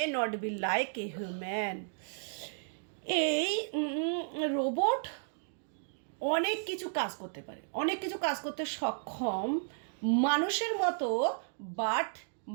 not be like a human. এই রোবট অনেক কিছু কাজ করতে পারে, অনেক কিছু কাজ করতে সক্ষম মানুষের মতো, বাট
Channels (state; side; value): silent; left; digital silence